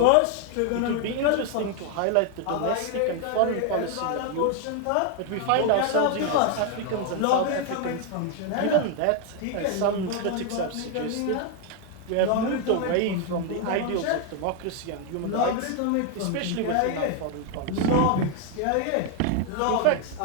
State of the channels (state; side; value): different; both; correlation 0.01